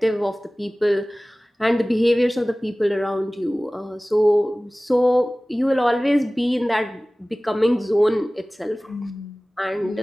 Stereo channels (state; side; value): normal; both; correlation 0.98